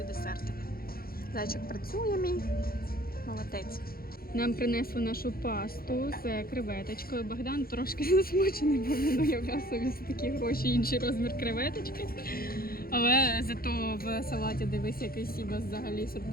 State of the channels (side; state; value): right; late; 0.43 ms